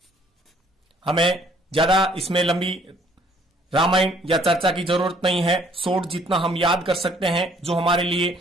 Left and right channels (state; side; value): normal; both; correlation 0.61